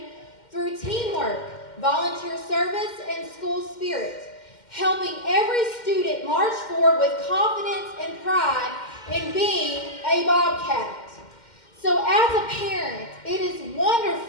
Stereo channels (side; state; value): right; late; 2.1 ms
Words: through teamwork, volunteer service, and school spirit, helping every student march forward with confidence and pride in being a Bobcat. So as a parent, it is